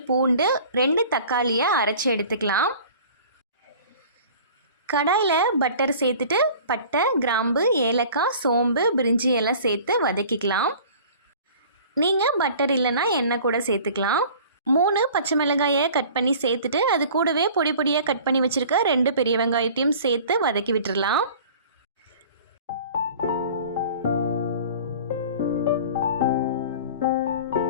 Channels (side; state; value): both; inverted; correlation -0.45